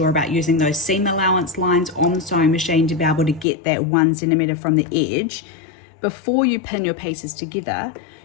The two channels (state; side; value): drops out; right; at 3.5 s